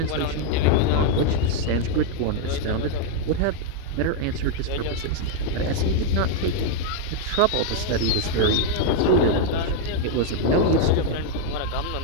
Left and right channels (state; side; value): different; both; correlation 0.00